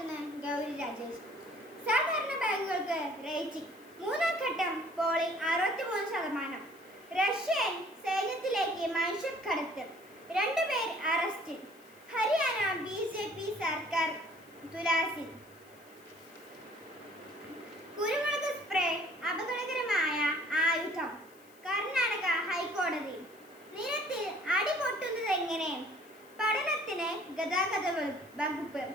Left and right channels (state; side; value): noise; left; hiss, 27 dB below the sound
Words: ഗൗരി രാജേഷ്. സാധാരണ ബാങ്കുകൾക്ക് റേറ്റിംഗ്. മൂന്നാം ഘട്ടം പോളിംഗ് 63%. റഷ്യൻ സൈന്യത്തിലേക്ക് മനുഷ്യക്കടത്ത്. 2 പേർ അറസ്റ്റിൽ. ഹരിയാന BJP സർക്കാർ തുലാസിൽ. കുരുമുളക് സ്പ്രേ അപകടകരമായ ആയുധം. കർണാടക ഹൈക്കോടതി. നിരത്തിൽ അടിപൊട്ടുന്നതെങ്ങനെ? പഠനത്തിന് ഗതാഗത വകുപ്പ്.